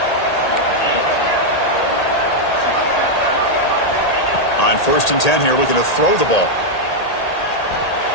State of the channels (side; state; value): right; late; 1.8 ms